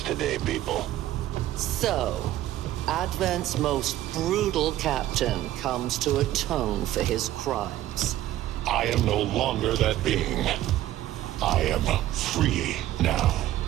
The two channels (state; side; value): quieter; left; 13.9 dB